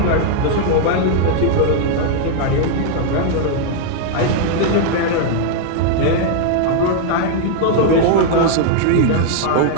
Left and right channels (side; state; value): both; different; correlation -0.01